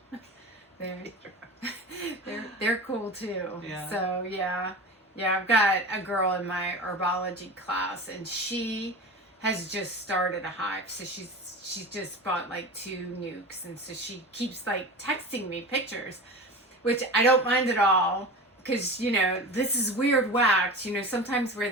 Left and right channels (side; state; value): both; normal; correlation 0.31